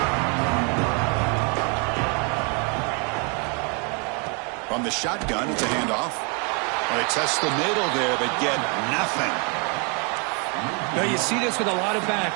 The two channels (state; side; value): quieter; left; 35.1 dB